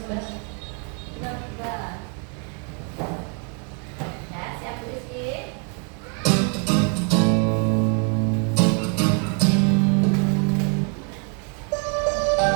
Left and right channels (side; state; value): left; quieter; 38.9 dB